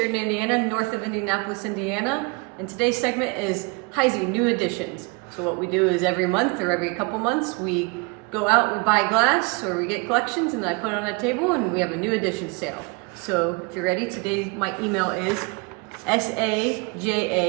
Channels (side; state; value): left; quieter; 30.3 dB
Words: Indiana, north of Indianapolis, Indiana. And today's segment is Heisey New Additions. So what we do is every month or every couple months, we go out, we buy glass, or we get collections, and I put it on a table, and we have a new addition sale. So if you're ready, today my email is